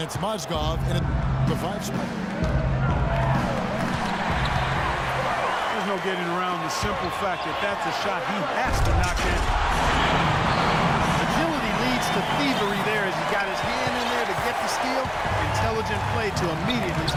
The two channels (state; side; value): identical; both; correlation 1.00